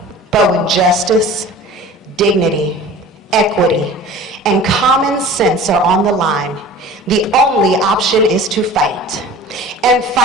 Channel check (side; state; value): both; normal; correlation 0.42